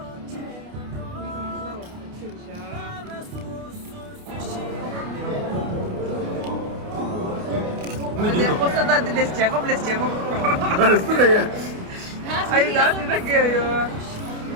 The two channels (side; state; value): left; late; 29 ms